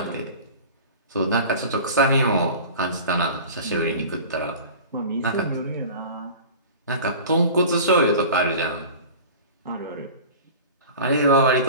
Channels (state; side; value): inverted; both; correlation -0.38